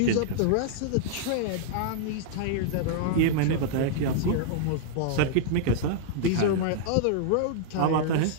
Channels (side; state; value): both; different; correlation -0.02